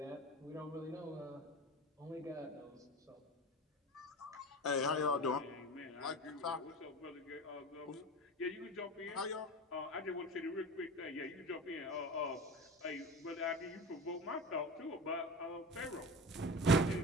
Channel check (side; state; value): both; normal; correlation 0.32